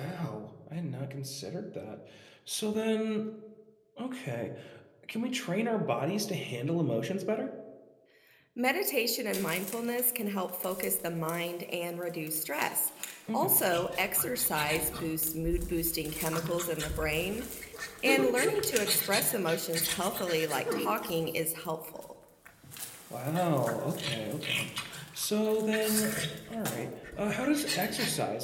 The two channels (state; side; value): identical; both; correlation 1.00